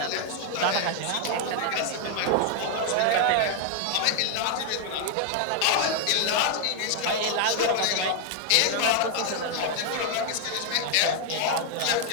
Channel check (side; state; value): both; different; correlation 0.00